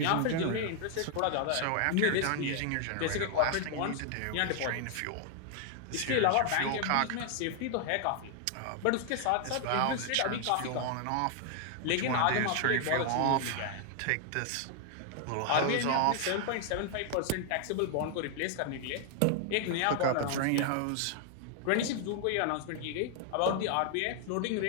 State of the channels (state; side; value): different; both; correlation 0.00